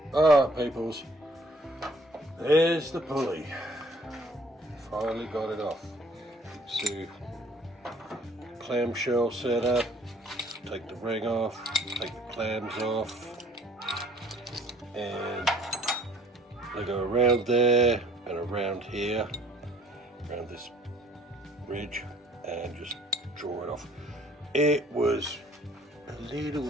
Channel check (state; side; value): normal; both; correlation 0.57